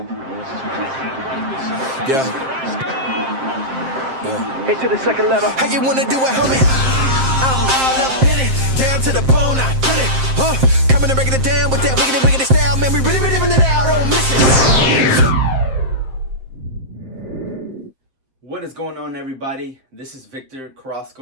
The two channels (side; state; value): left; late; 7.6 ms